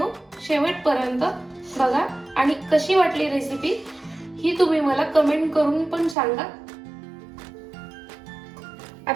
शेवटपर्यंत बघा आणि कशी वाटली रेसिपी ही तुम्ही मला कमेंट करून पण सांगा।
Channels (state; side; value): drops out; left; at 6.2 s